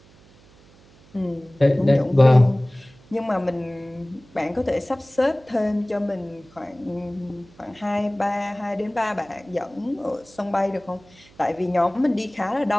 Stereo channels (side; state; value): right; noise; hum, 27 dB below the sound